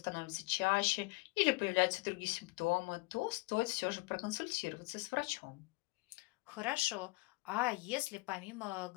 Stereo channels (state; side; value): quieter; right; 25.3 dB